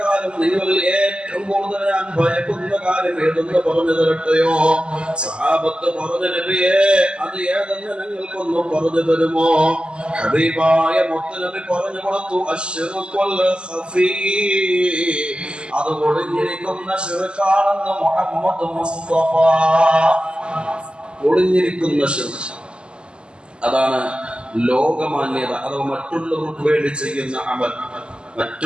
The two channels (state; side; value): late; left; 0.051 ms